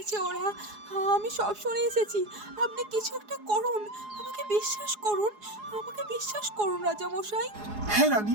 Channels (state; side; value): late; left; 4.8 ms